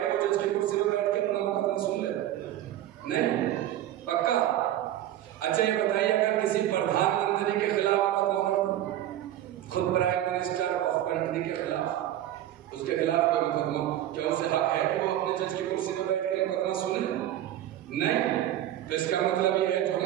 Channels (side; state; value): left; quieter; 12.7 dB